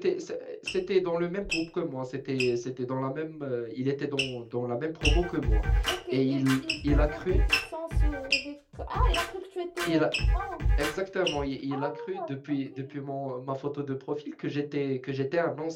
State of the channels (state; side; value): identical; both; correlation 1.00